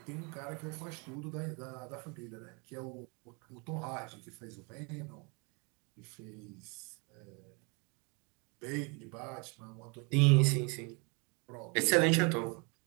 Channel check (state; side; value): quieter; left; 31.9 dB